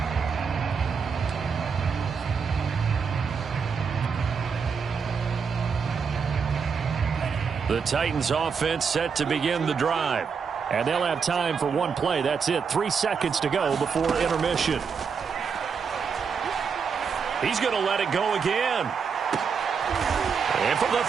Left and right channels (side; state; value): left; quieter; 6.0 dB